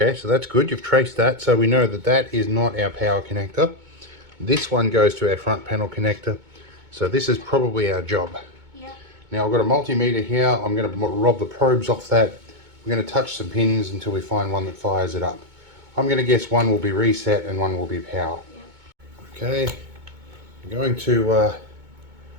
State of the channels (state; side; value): late; left; 2.2 ms